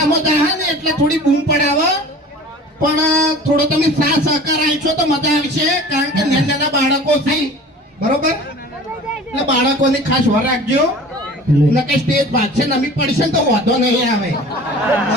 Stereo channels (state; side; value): normal; both; correlation 0.42